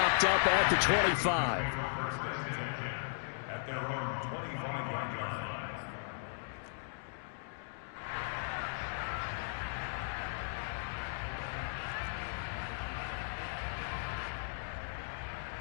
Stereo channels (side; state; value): right; silent; digital silence